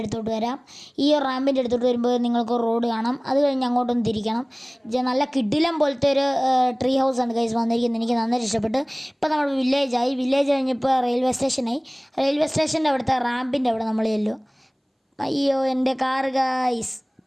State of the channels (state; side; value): identical; both; correlation 1.00